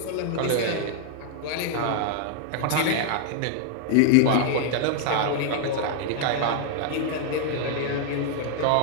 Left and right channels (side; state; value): both; different; correlation 0.00